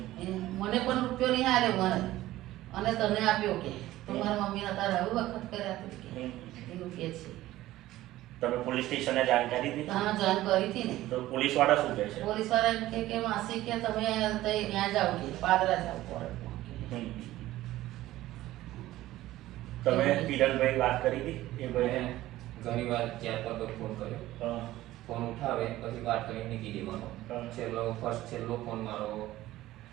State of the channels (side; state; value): left; quieter; 15.7 dB